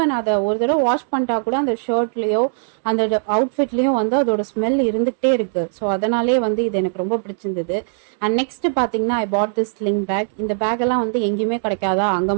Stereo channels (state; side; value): silent; left; digital silence